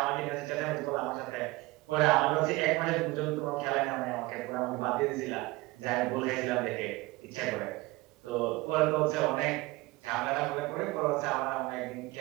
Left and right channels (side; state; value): left; quieter; 21.8 dB